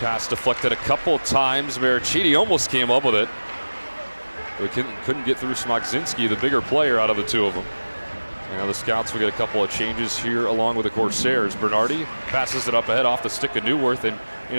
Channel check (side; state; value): both; inverted; correlation -1.00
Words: pass deflected a couple times. Maricini almost came up with it, but couldn't get through Smokzinski, the bigger player out of the two of them. Now the Scouts will get a couple of changes here along with the Corsairs. Bernardi passes it up ahead off the stick of Newworth and